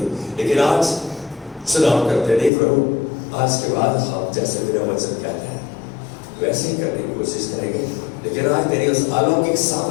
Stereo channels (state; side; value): drops out; right; at 2.5 s